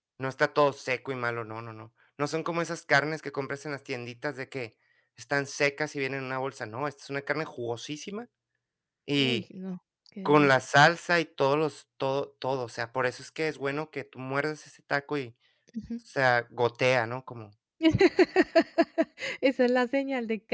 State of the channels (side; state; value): both; identical; correlation 1.00